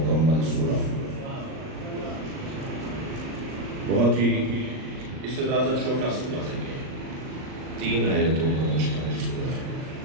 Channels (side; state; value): left; late; 38 ms